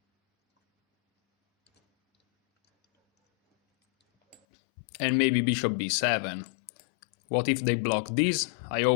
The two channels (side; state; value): right; drops out; at 4.4 s